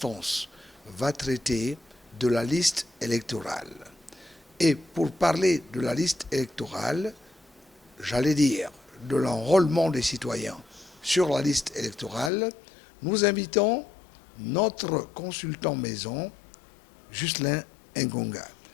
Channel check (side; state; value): right; drops out; at 12.3 s